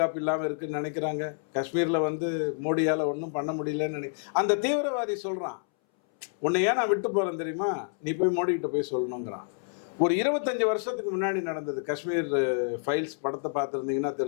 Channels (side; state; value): right; silent; 59 dB below the other